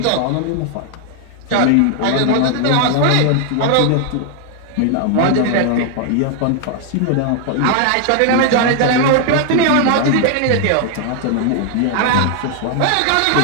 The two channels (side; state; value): both; different; correlation 0.00